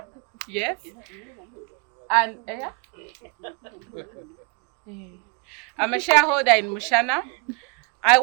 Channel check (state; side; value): quieter; left; 34.3 dB